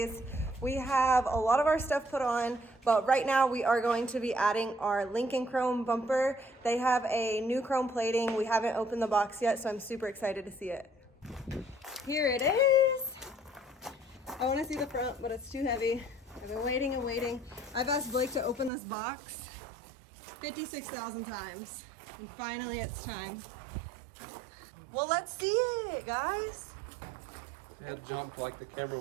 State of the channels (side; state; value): left; drops out; at 18.7 s